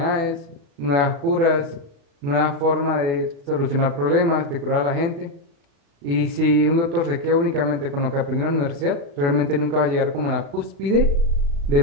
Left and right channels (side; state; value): left; late; 36 ms